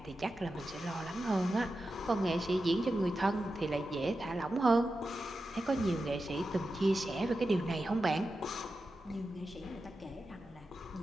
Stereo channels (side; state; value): both; normal; correlation 0.91